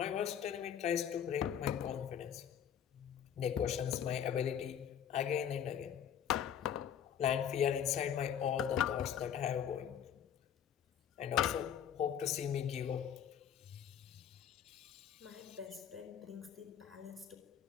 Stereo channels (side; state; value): right; quieter; 9.1 dB